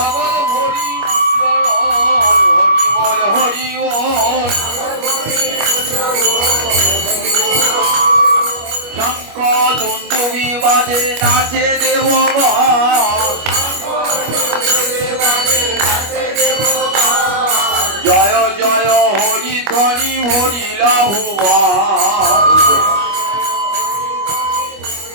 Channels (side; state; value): left; late; 25 ms